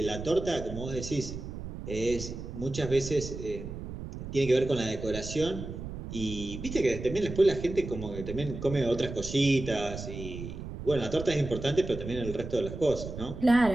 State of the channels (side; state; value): right; noise; rumble, 9 dB below the sound